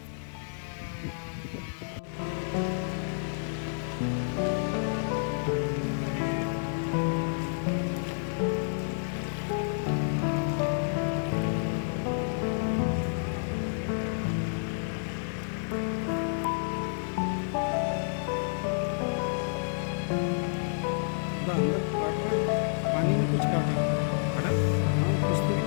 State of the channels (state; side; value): silent; right; 58 dB below the other